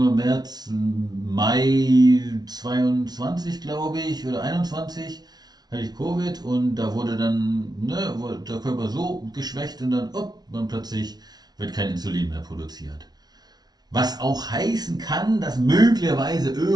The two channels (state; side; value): late; left; 0.19 ms